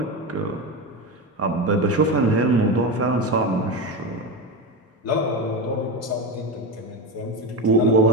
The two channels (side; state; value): both; normal; correlation 0.18